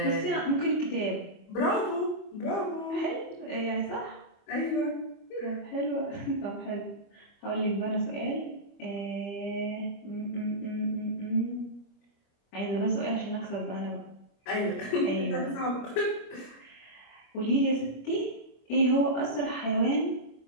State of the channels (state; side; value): late; right; 25 ms